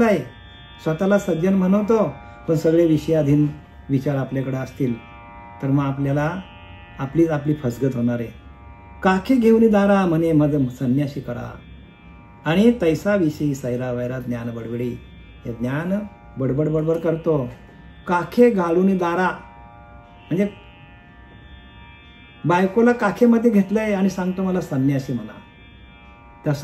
स्वतःला सज्जन म्हणवतो पण सगळे विषयाधीन विचार आपल्याकडे असतील तर मग आपल्याला आपली फसगत होणार आहे. काखे घेऊन दारा म्हणे मद संन्यासी करा, आणि तैसा विषयी सैरा वैरा ज्ञान बडबडी. हे ज्ञान बडबड बडबड करतो. काखे घालून दारा म्हणजे बायकोला काखेमध्ये घेतलंय आणि सांगतो मला संन्यासी म्हणा.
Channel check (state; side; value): identical; both; correlation 1.00